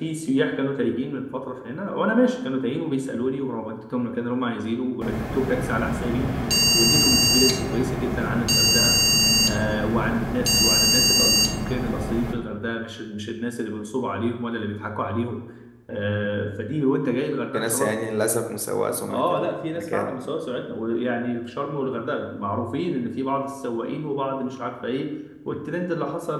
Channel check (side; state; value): both; identical; correlation 1.00